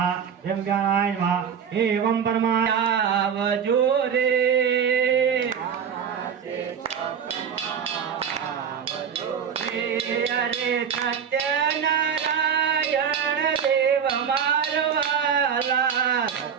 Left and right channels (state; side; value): quieter; left; 7.5 dB